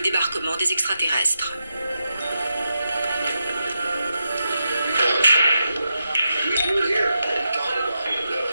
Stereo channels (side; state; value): both; inverted; correlation -0.86